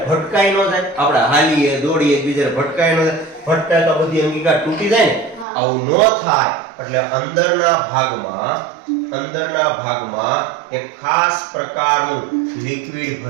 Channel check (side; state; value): left; drops out; at 5.5 s